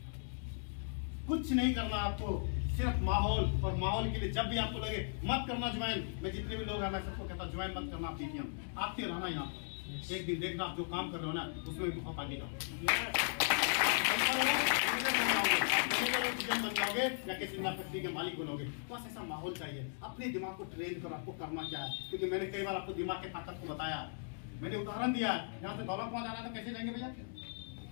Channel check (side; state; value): right; silent; digital silence